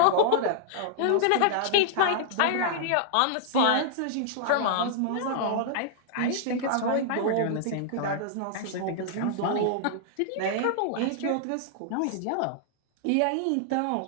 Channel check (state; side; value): different; both; correlation -0.01